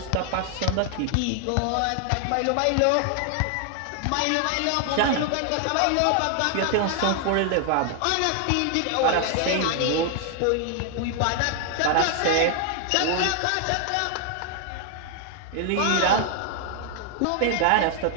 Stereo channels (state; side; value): different; both; correlation 0.00